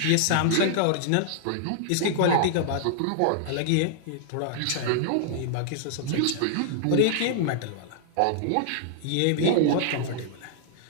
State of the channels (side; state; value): both; different; correlation -0.01